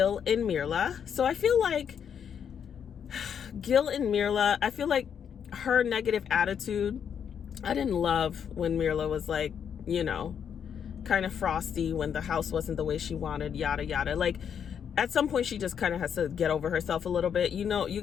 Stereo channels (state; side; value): quieter; right; 7.9 dB